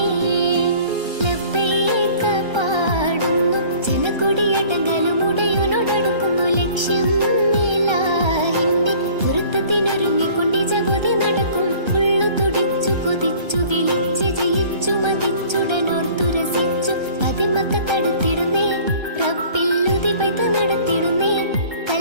ലബ്ബൈക പാടുന്നു ജനക്കൊടിയടങ്ങലും ഉടയോനോടടുക്കുന്നു ലക്ഷ്യം മേലാഹിന്റെ പൊരുത്തത്തിനൊരുങ്ങിക്കൊണ്ട് ജഗതി നടക്കും ഉള്ളു തുടിച്ചു കൊതിച്ചു വിളിച്ച് ജയിച്ചു മതിച്ചുടനോർത്തു രസിച്ചു പതിമക്കത്തടുത്തിടുന്നേ റബ്ബില്ലുതി ബൈത്ത് നടത്തിടുന്നേ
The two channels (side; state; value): left; late; 1.3 ms